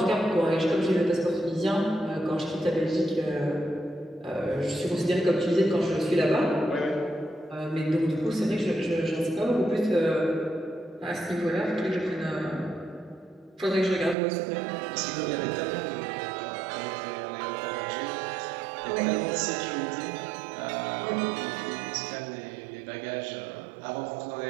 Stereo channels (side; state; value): left; drops out; at 14.2 s